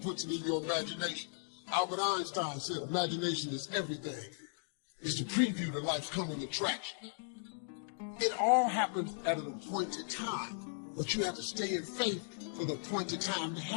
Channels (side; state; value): right; silent; digital silence